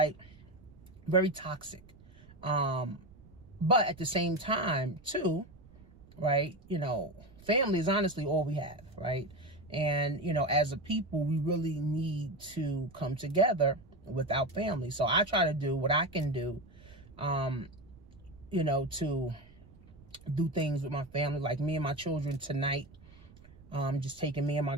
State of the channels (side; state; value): right; noise; rumble, 23 dB below the sound